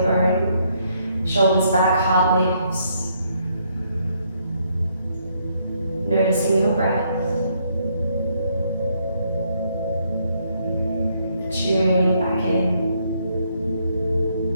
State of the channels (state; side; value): inverted; both; correlation -0.72